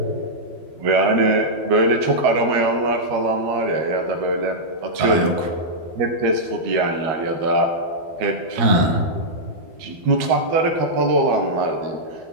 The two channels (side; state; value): left; late; 12 ms